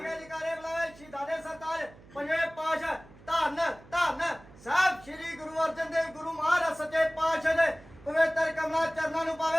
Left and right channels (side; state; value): right; noise; hum, 22 dB below the sound